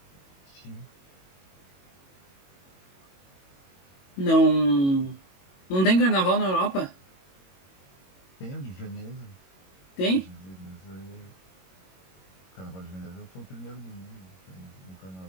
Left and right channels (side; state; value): right; late; 22 ms